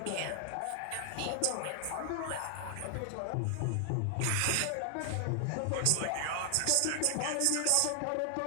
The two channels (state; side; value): different; both; correlation 0.00